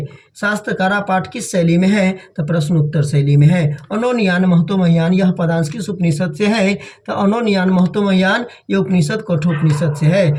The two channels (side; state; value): both; identical; correlation 1.00